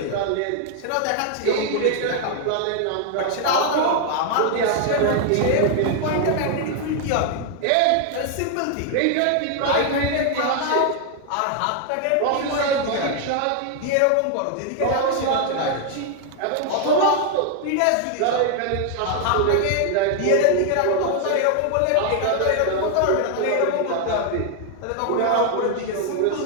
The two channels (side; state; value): both; different; correlation 0.00